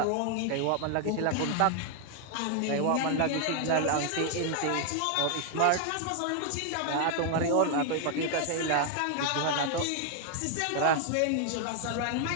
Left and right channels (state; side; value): different; both; correlation 0.00